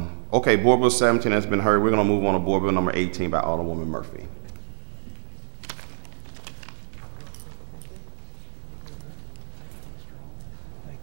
Okay, Board Bill 17 has been heard. We're going to move on to Board Bill number 18 by Alderwoman Murphy.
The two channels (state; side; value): silent; left; digital silence